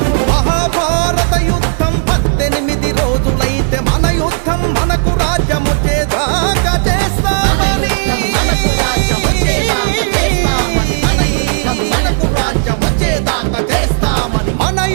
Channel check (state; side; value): silent; left; 71 dB below the other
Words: మహాభారత యుద్ధం 18 రోజులైతే మన యుద్ధం మనకు రాజ్యం వచ్చేదాకా చేస్తామని. మనకు రాజ్యం వచ్చేదాకా చేస్తామని. మనకు రాజ్యం వచ్చేదాకా చేస్తామని. మన